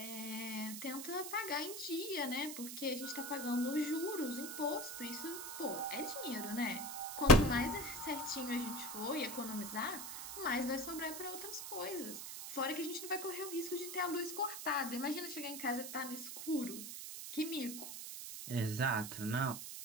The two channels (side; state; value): right; noise; hiss, 7 dB below the sound